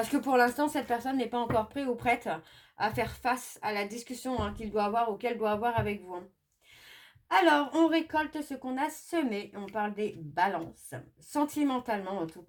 que pour l'instant, cette personne n'est pas encore prête ou prête à faire face à la discussion qu'il doit avoir ou qu'elle doit avoir avec vous. Alors, on récolte ce qu'on a semé. On parle des balances. Sentimentalement, en tout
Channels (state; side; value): identical; both; correlation 1.00